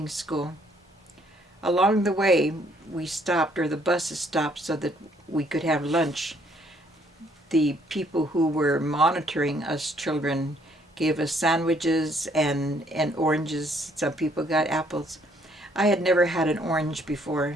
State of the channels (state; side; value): normal; both; correlation 0.66